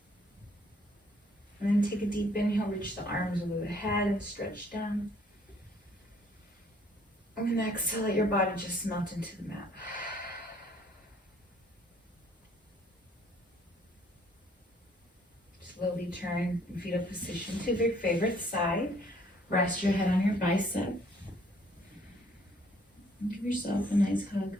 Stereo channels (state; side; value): normal; both; correlation 0.62